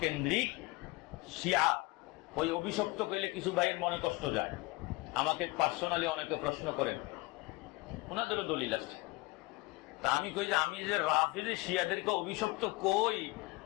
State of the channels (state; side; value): quieter; right; 23.6 dB